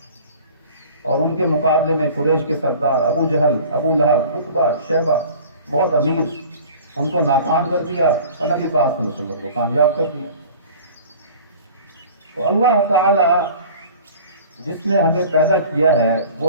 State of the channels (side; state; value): both; inverted; correlation -0.44